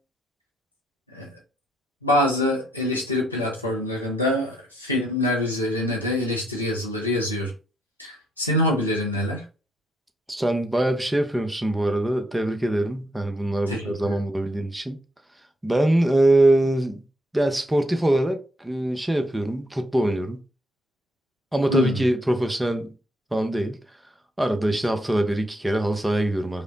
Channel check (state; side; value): normal; both; correlation 0.75